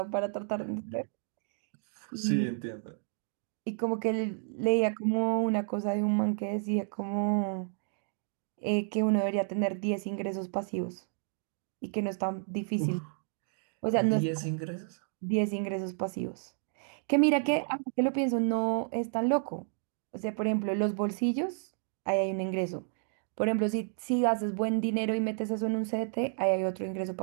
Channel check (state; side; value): silent; left; 57 dB below the other